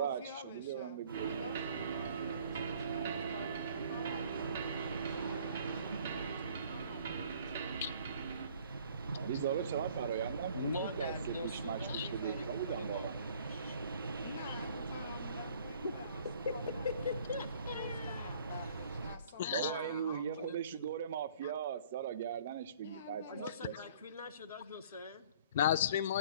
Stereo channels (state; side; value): inverted; both; correlation -0.55